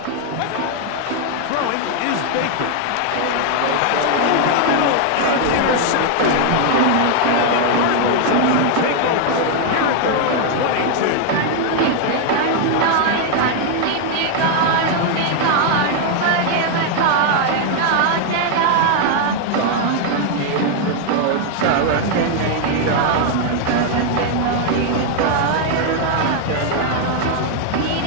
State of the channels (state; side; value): different; both; correlation 0.00